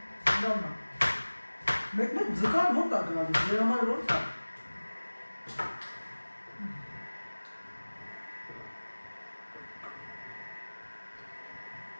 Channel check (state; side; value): inverted; both; correlation -1.00